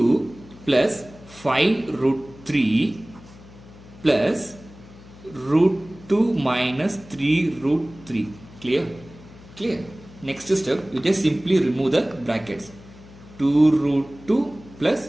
plus 5 root 3 plus root 2 minus 3 root 3. Clear? Clear? Next step, you just simply remove the brackets. 2 root 2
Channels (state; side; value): noise; left; hum, 20 dB below the sound